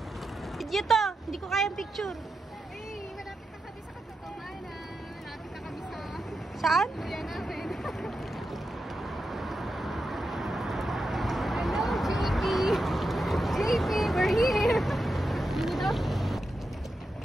Video to! Hindi ko kayang picture. Hey, malapit na kami sa katotohanan. Malapit na kami sa Saan? kuya namin. Hello, JP! JP, we're here! Dito?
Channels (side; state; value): both; normal; correlation 0.88